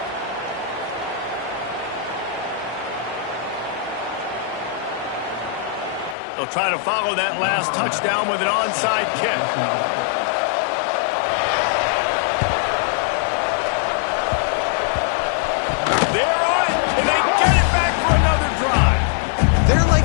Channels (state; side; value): drops out; right; at 6.2 s